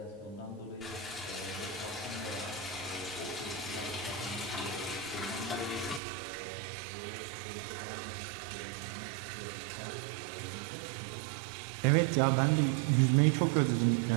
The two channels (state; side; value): drops out; left; at 6.0 s